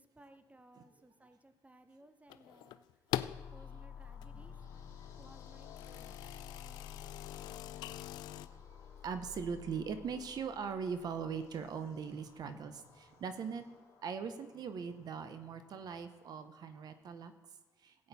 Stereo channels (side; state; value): both; normal; correlation 0.47